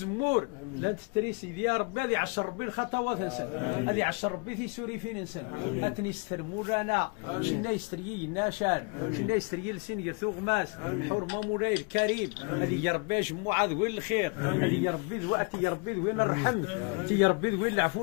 لا تتريسي يا ربي هذه 10 ربي الخطوات نسن هذه 10 ربي في سوري فين نسن أتنسترمو لنا شنا يستريي الناشان شنا يستريي لسين يثوغ ماس الحرمة مولاي الكريم هذه يا ربي جمعة ذوين الخير هذه يا ربي ذواتي يا ربي ذوين الرحم يا ربي ذوين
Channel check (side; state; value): right; quieter; 32.1 dB